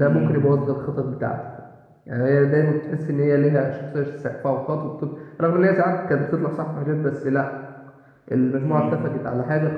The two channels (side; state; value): both; identical; correlation 1.00